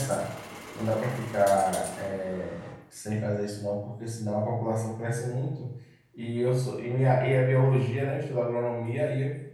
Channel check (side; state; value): both; identical; correlation 1.00